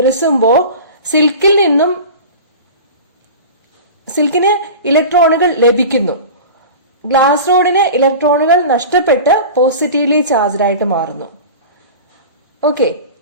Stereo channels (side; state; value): both; inverted; correlation -0.34